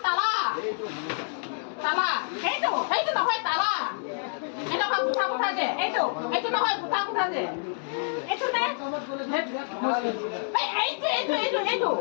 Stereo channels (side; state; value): right; silent; digital silence